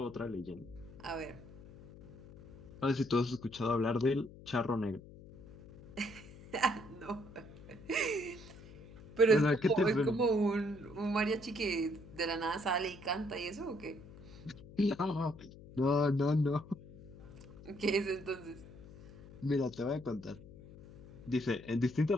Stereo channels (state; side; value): noise; left; hum, 18 dB below the sound